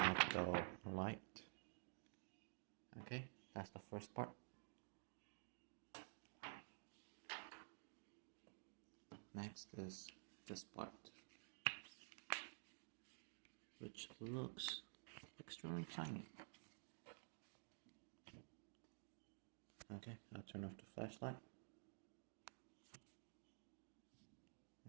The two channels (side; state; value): left; silent; digital silence